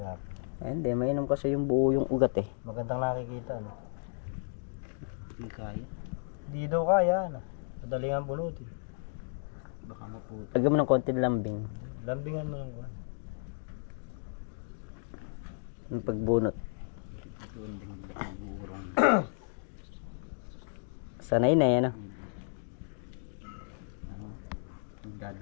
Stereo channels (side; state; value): right; silent; digital silence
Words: Ay, hindi, mainom kasi yung buo yung ugat eh. Magandang nakikita ano. Hindi kaya. Hindi daw kaya ano. Madaling ang bunutin. Baka maputo. Lagyan mo ng konti lambing. Lambingan mo lang ko. Yung pagbunot. Ito ang buurong. Sanay na yan ah.